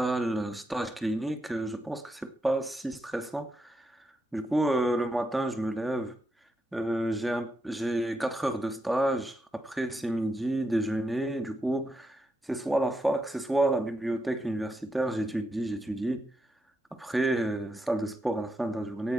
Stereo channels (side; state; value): both; normal; correlation 0.84